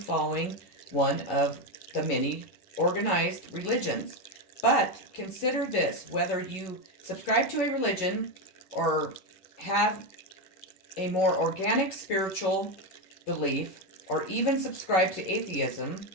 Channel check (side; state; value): right; late; 10 ms